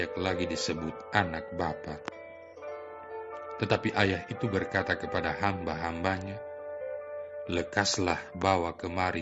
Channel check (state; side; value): identical; both; correlation 1.00